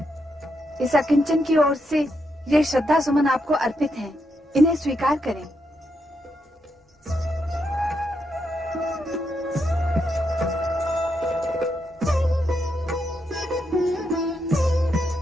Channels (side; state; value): both; normal; correlation 0.82